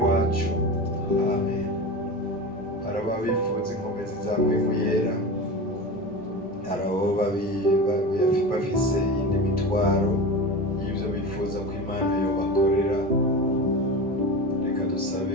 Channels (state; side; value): normal; both; correlation 0.27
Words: wacu, amen. Hari ababifuza inkomezi zawe mu yera, hari abo bafise iyindi mitwaro y'ibyo bifuza ko Imana yobakorera. Reka